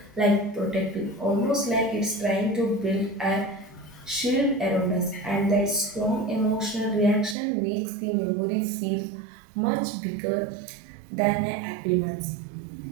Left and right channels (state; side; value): drops out; left; at 7.4 s